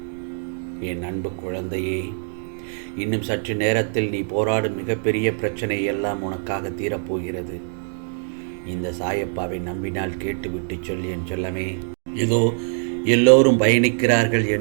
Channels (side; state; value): left; silent; 60 dB below the other